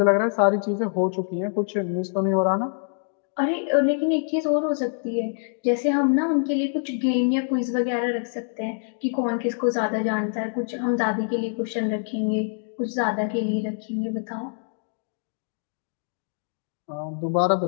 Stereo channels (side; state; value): right; silent; 62 dB below the other